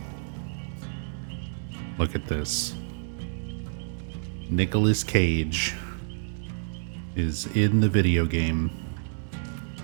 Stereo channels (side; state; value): left; silent; 59 dB below the other